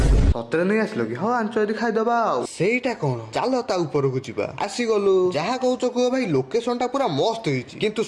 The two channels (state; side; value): identical; both; correlation 1.00